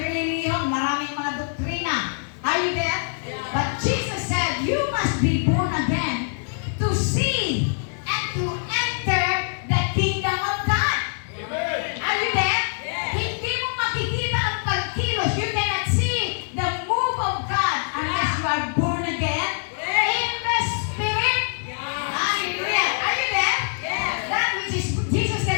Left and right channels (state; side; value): silent; right; 60 dB below the other